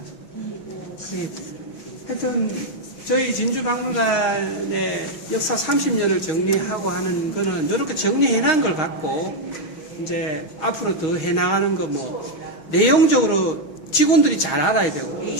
하여튼 저희 진주박물관의 역사 30년을 정리하고 하는 거는 이렇게 정리해놓은 걸 갖고 이제 앞으로 더 해나가는 거 뭐 내용적으로 직원들이 잘 알아야 되고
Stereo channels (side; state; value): right; late; 6.3 ms